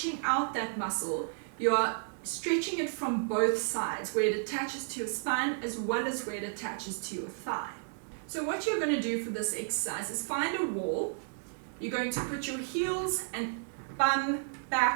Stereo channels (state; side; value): silent; left; digital silence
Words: out that muscle, you are stretching it from both sides, where it attaches to your spine as well as where it attaches to your thigh. So what you're going to do for this exercise is find a wall. You're going to put your heels and bum,